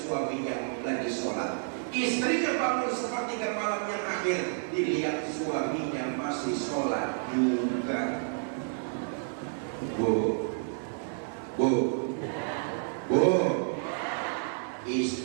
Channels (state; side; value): silent; left; digital silence